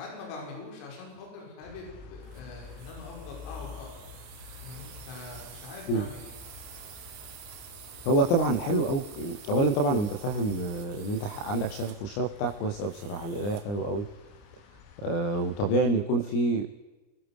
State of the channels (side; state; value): right; late; 29 ms